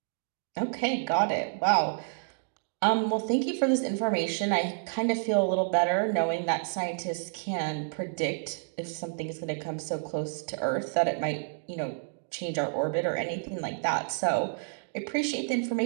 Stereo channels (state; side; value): silent; left; digital silence